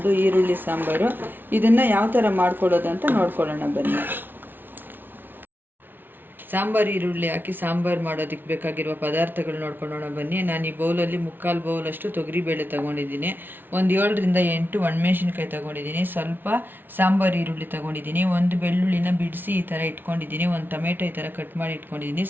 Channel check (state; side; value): late; left; 0.095 ms